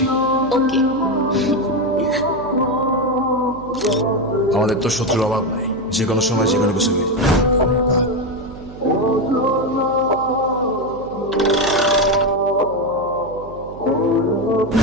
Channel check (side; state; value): right; noise; hum, 16 dB below the sound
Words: ওকে। আমাদের তো শত্রুর অভাব নাই, যে কোনো সময় যে কোনো কিছু হয়ে যায়।